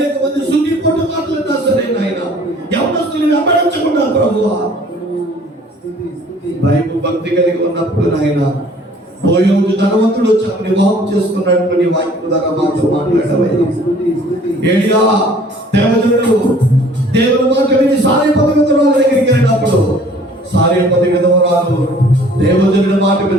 మంది సుఖీ పొట్టు మాట్లాడినా సరే నాయన యవనస్తులు వెంబడించకుండా ప్రభువా బైబిల్ భక్తి కలిగి ఉన్నప్పుడు నాయన బోయోజు ధనవంతుడు వచ్చి వివాహం చేసుకున్నట్టు నీ వాక్యం ద్వారా మాతో మాట్లాడవయ్యా. ఏలియా దేవజనుడు దేవుని మాట విని సారేపతి విధవరాలు దగ్గరికి వెళ్ళినప్పుడు సారేపతి విధవరాలు దేవజనుడి మాట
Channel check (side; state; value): both; normal; correlation 0.54